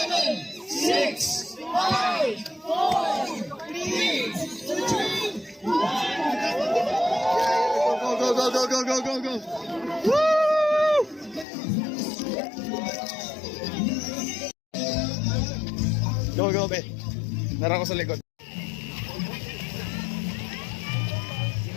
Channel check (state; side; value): drops out; right; at 11.5 s